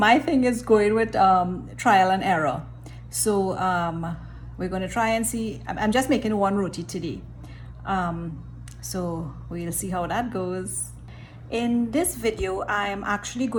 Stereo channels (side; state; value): both; identical; correlation 1.00